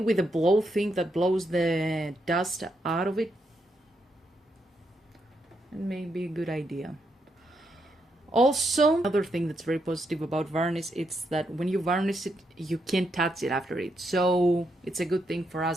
a blow thing that blows the dust out of it, it may be a good idea. Also, another thing that's very positive about varnish, it's that when you varnish it, you can't touch it after it. So it's a good thing for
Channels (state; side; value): normal; both; correlation 0.80